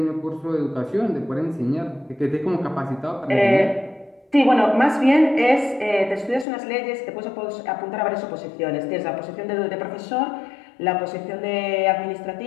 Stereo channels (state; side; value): drops out; right; at 6.5 s